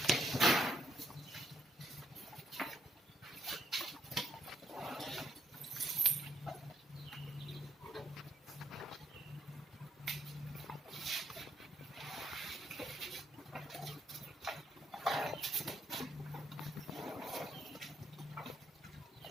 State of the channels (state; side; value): normal; both; correlation 0.75